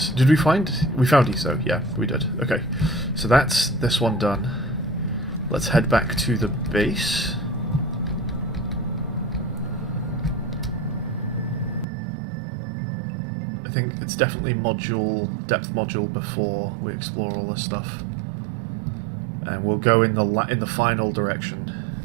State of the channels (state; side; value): drops out; left; at 11.9 s